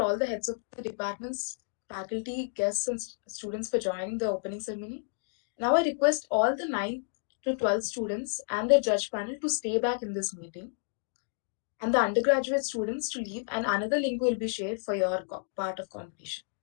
the heads of the departments, faculty, guests, and students for joining the opening ceremony. Now I request all the 9th to 12th students and their judge panel to stay back in this meeting, and the undergraduate students to leave, and another link will be shared for your part of competition.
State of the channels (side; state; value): right; silent; digital silence